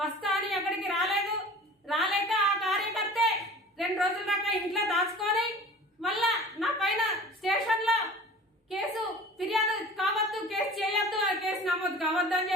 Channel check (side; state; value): both; normal; correlation 0.42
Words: వస్తా అని అక్కడికి రాలేక ఆ కార్యకర్తే 2 రోజుల దాకా ఇంట్లో దాచుకొని మళ్ళా నా పైన స్టేషన్లో కేసు ఫిర్యాదు కావద్దు, కేసు చేయొద్దు, కేసు నమోదు కావద్దు అని